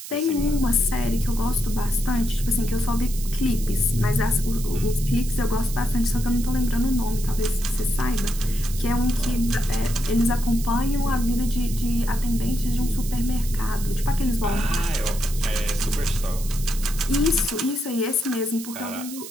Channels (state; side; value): noise; right; hiss, 12 dB below the sound